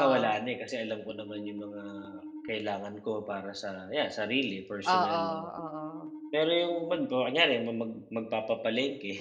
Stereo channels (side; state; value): both; identical; correlation 1.00